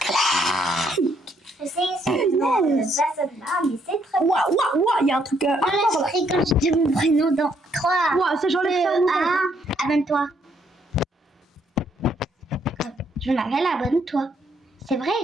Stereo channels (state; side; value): normal; both; correlation 0.71